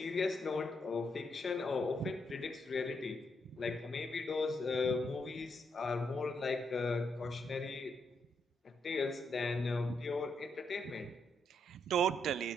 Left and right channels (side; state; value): both; normal; correlation 0.78